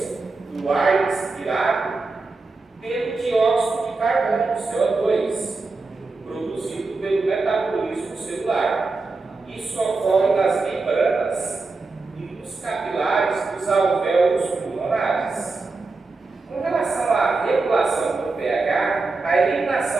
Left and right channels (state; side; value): quieter; left; 3.8 dB